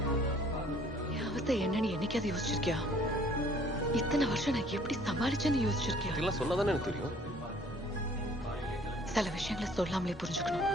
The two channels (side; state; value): both; normal; correlation 0.57